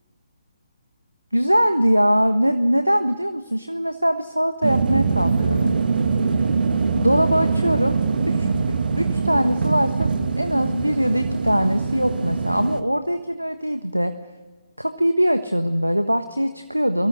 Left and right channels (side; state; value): both; inverted; correlation -0.94